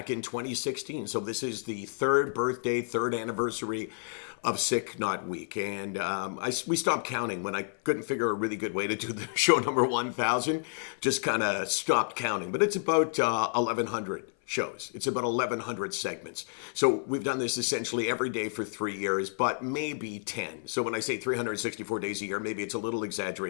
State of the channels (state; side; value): silent; right; 58 dB below the other